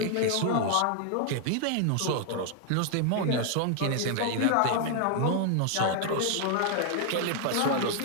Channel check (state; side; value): different; both; correlation 0.00